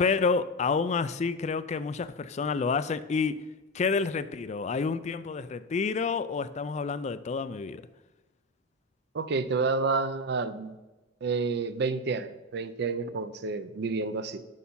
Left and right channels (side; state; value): both; normal; correlation 0.14